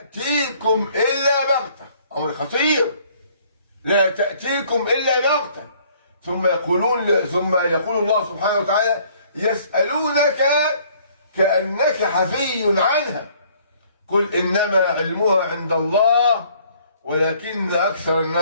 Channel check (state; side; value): inverted; both; correlation -0.60